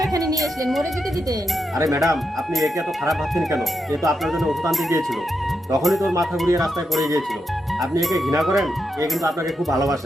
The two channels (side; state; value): both; normal; correlation 0.85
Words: এখানে নিয়ে আসলেন? মরে যেতে দিতেন। আরে ম্যাডাম, আপনি একে এত খারাপ ভাবছেন কেন? এ তো আপনার জন্য ওষুধ আনতে গিয়েছিল, তখনই তোর মাথা ঘুরিয়ে রাস্তায় পড়ে গিয়েছিল। আপনি একে ঘৃণা করেন, এ কিন্তু আপনাকে খুব